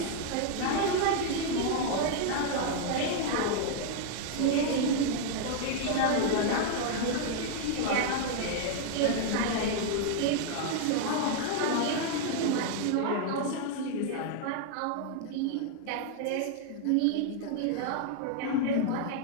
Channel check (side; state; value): both; different; correlation 0.00